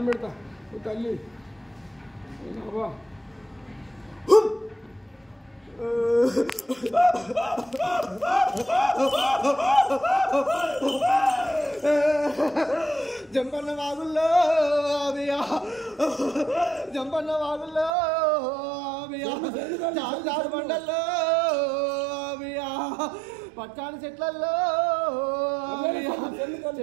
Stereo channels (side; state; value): left; drops out; at 17.9 s